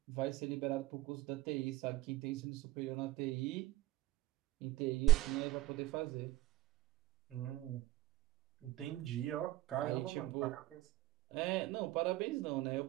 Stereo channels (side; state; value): left; quieter; 16.8 dB